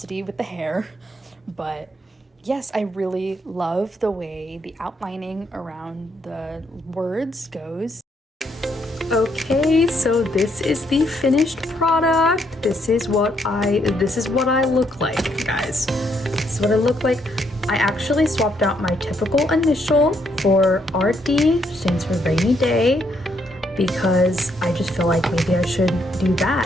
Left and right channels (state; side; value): normal; both; correlation 0.74